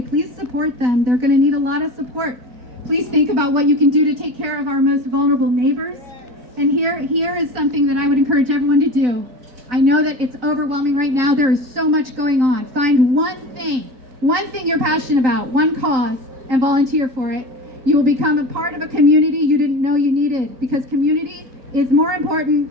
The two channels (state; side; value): late; left; 3.8 ms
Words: Please support them. They're going to need a lot of support. Please think about what you can do to take care of our most vulnerable neighbors. And here is something that I would encourage everyone to do. I know that it's overwhelming right now. There is so much going on. Find one thing you're passionate about, one cause, and volunteer for it. You will become a part of a community you didn't know you needed, because community is more important